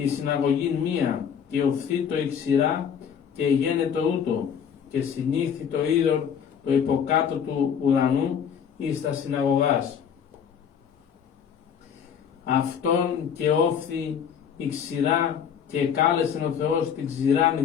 συναγωγή μία, και οφθεί το η ξηρά και γένετο ούτω, και συνήθη το είδωρ το υποκάτω του ουρανού εις τα συναγωγάς. Αυτόν και όφθη η ξηρά, και κάλεσεν ο Θεός την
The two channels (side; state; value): right; quieter; 7.7 dB